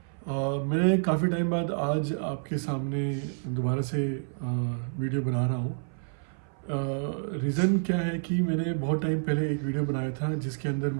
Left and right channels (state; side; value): silent; left; 57 dB below the other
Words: मैं काफ़ी टाइम बाद आज आपके सामने दोबारा से वीडियो बना रहा हूँ। रीज़न क्या है कि मैंने बहुत टाइम पहले एक वीडियो बनाया था जिसके अंदर